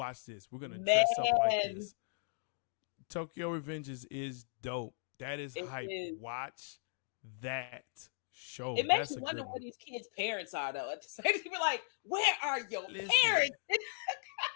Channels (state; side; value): silent; right; digital silence